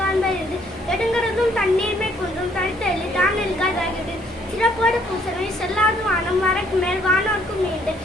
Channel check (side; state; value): both; normal; correlation 0.65